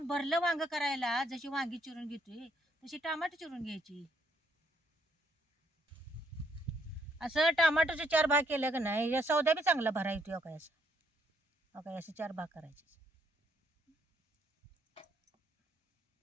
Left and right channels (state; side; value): normal; both; correlation 0.70